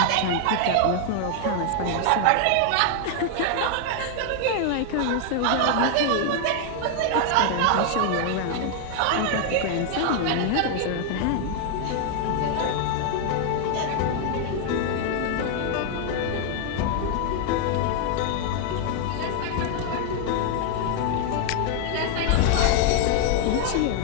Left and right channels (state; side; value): different; both; correlation 0.00